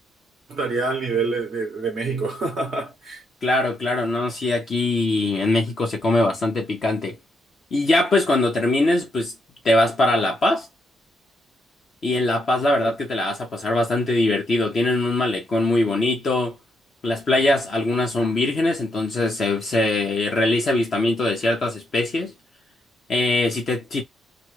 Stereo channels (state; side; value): normal; both; correlation 0.78